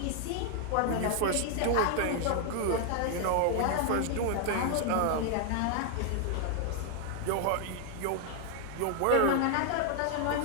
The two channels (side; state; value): both; different; correlation 0.00